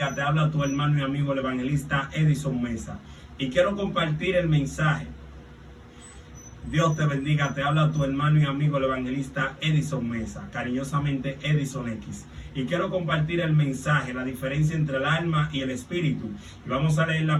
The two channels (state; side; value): identical; both; correlation 1.00